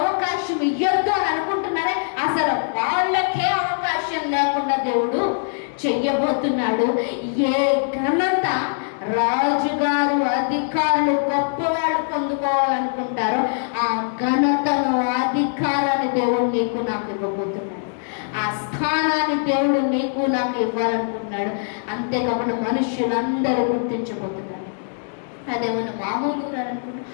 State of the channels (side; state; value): right; silent; digital silence